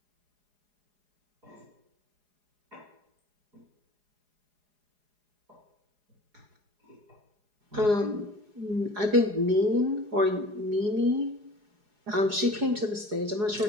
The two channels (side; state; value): left; late; 4.8 ms